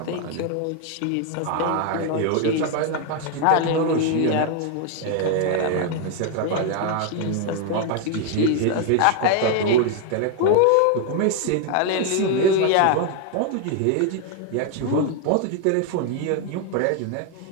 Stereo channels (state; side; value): different; both; correlation 0.01